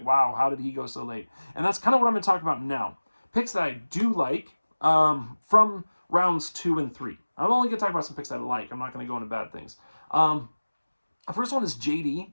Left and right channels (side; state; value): both; inverted; correlation -1.00